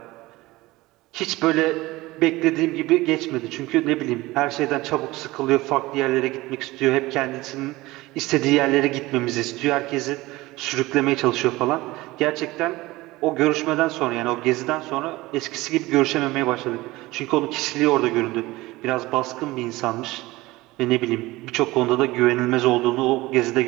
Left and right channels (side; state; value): left; quieter; 19.6 dB